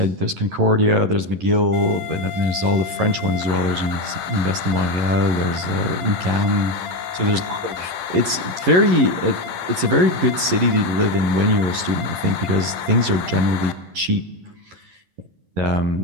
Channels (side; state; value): left; late; 11 ms